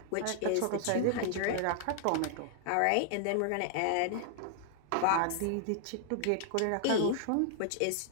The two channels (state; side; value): different; both; correlation 0.00